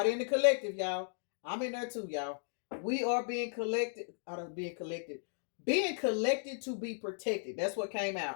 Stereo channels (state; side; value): silent; right; digital silence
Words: in the collective, y'all. I'm in there too, y'all. We are being collected. Being collected to be protected. That's what came